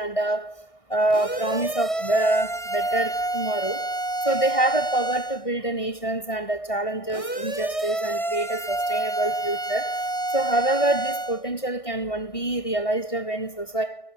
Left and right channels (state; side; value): late; right; 1.6 ms